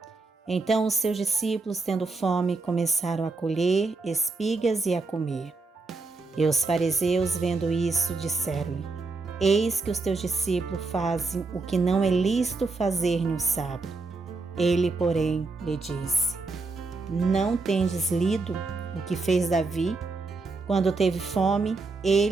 Então os seus discípulos, tendo fome, começaram a colher espigas e a comer. E os fariseus, vendo isso, disseram-lhe: Eis que os teus discípulos fazem o que não é lícito fazer no sábado. Ele, porém, lhe disse: Não tendes lido o que fez Davi, quando teve fome,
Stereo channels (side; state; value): left; quieter; 3.8 dB